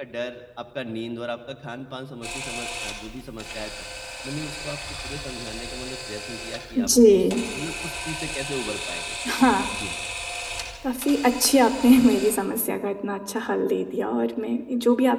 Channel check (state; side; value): identical; both; correlation 1.00